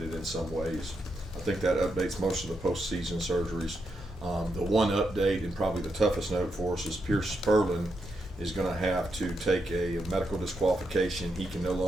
in some ways. I think that updates most of the postseason surgeries. The one update, and probably the toughest note for us, is Pierce Spurlin is going to have to take a medical disqualification. He can no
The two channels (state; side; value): normal; both; correlation 0.83